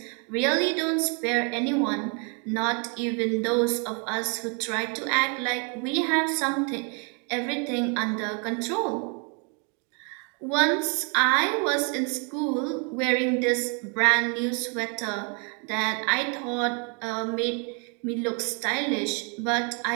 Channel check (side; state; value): left; quieter; 36.6 dB